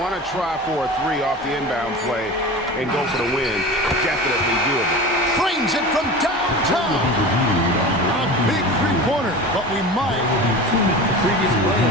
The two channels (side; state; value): both; normal; correlation 0.33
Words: to try for a 3 off the inbound play and go for the win. Definitely doable. Frames it from downtown. A big three-pointer, but we might. Previous